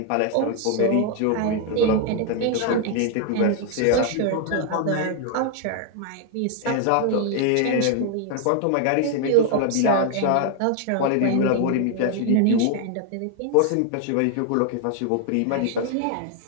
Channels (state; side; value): different; both; correlation 0.00